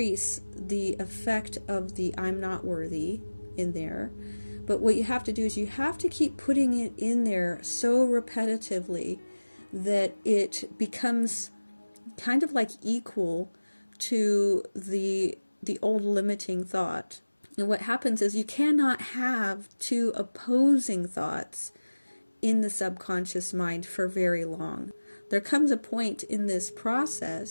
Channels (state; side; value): inverted; both; correlation -1.00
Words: the effect of the I'm not worthy in there. But what you have to do is you have to keep putting it in there so repetitively that it becomes kind of like equal to the old limiting thought. And what happens is you cannot have two opposing thoughts in the subconscious mind for very long. There comes a point in this